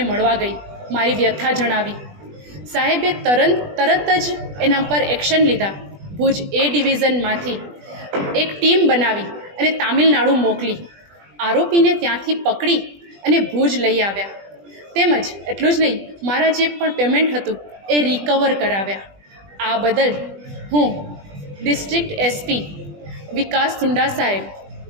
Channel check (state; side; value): late; left; 20 ms